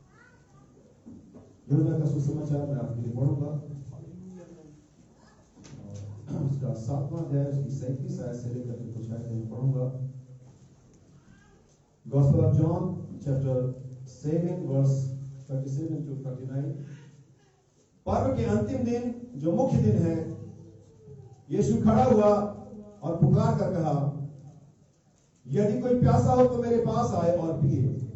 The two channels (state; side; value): identical; both; correlation 1.00